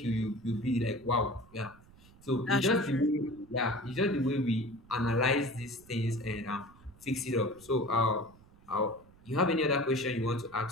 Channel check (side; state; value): right; noise; rumble, 25 dB below the sound